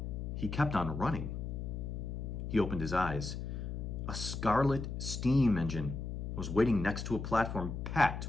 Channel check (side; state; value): left; noise; hum, 5 dB below the sound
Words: He kept on running. He opened his eyes. A scarlet steam engine was waiting next to a platform packed